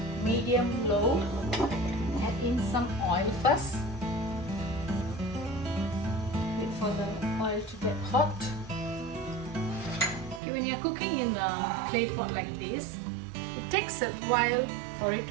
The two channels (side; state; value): left; drops out; at 10.4 s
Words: medium low. Add in some oil first. Wait for the oil to get hot. Okay, when you're cooking in a clay pot like this, it takes a while for it